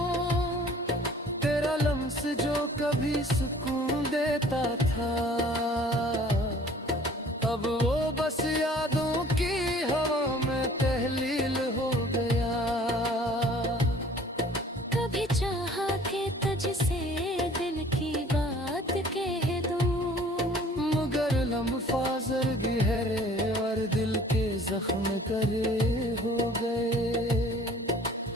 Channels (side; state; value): both; normal; correlation 0.52